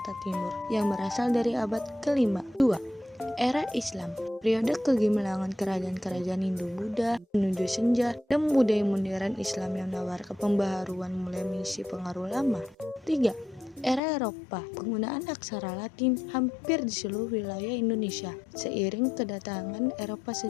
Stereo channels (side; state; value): right; drops out; at 14.0 s